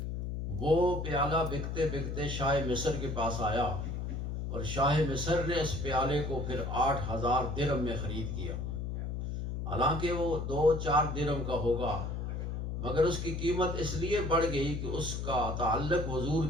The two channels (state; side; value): noise; left; hum, 4 dB below the sound